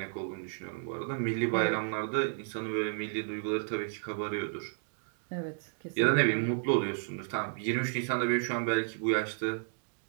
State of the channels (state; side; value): silent; left; digital silence